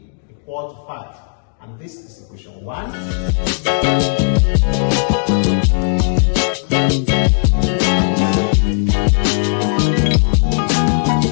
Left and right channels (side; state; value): right; silent; digital silence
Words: equal to 5. And this is equation 1.